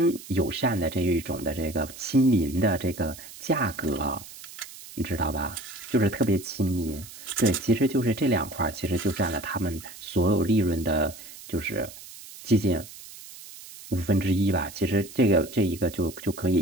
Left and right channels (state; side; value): noise; right; hiss, 16 dB below the sound